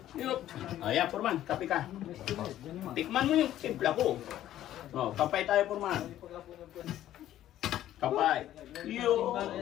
Yup. Ayan, Puriman, kape ka. Tikman mo yung timpla ko. Kapay tayo, Puriman. Kapay.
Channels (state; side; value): quieter; right; 12.7 dB